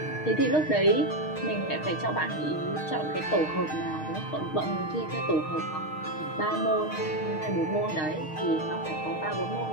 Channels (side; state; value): right; late; 6.5 ms